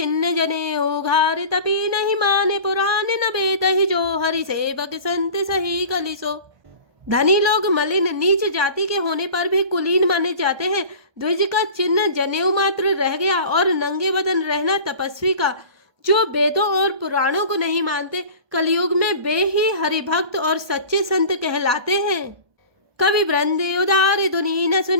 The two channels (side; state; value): left; late; 1.2 ms